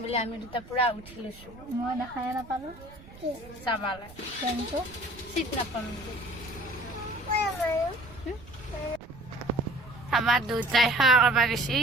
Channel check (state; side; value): noise; right; rumble, 20 dB below the sound